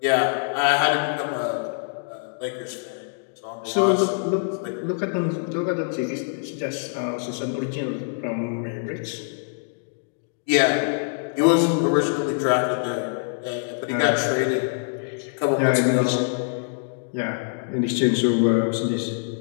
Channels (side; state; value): right; silent; digital silence